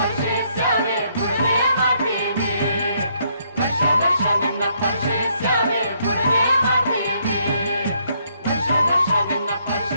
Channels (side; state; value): both; inverted; correlation -0.71